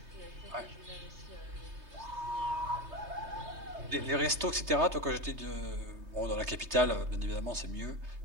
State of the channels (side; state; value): left; late; 3.2 ms